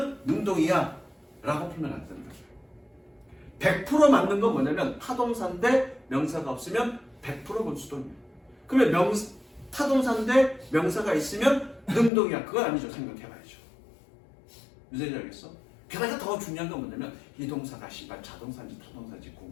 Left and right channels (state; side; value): drops out; right; at 12.1 s